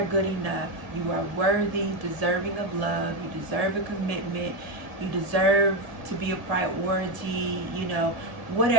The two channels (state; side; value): late; left; 1.7 ms